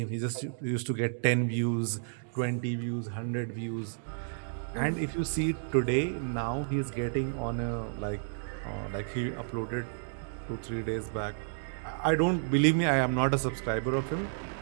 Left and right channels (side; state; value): left; silent; digital silence